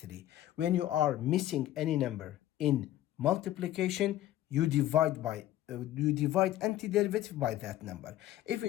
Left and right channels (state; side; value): quieter; right; 13.8 dB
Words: When you are missing any number in multiplication, you divide antiderivative by that number. If